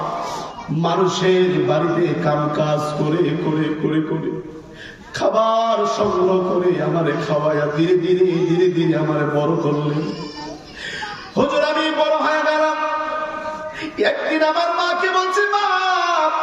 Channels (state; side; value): identical; both; correlation 1.00